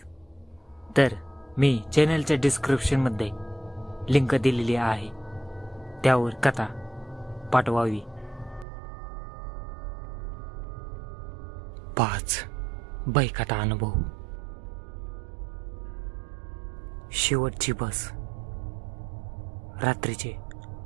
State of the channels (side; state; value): left; drops out; at 8.7 s